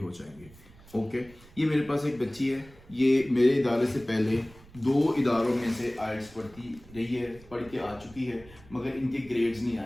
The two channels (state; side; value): noise; right; rumble, 22 dB below the sound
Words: जाएंगे। ओके, ये मेरे पास एक बच्ची है, ये मेरे इदारे से पहले 2 इदारों में से आईएल्ट्स पढ़ती रही है, पढ़ के आ चुकी है, मगर इनके ग्रेड्स नहीं